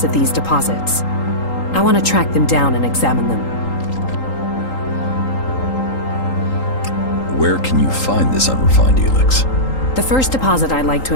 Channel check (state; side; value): late; right; 3.8 ms